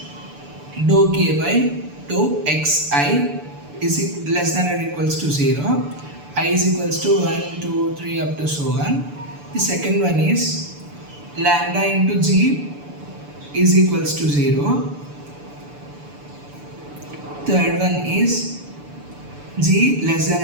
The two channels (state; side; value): late; left; 6.9 ms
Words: dou k by dou xi is less than or equals to 0, I is equals to 1, 2, 3 up to so on. The second one is lambda into g is equals to 0. Third one is g less